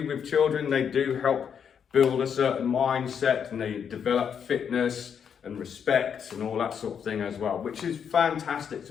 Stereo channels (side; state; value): right; quieter; 7.5 dB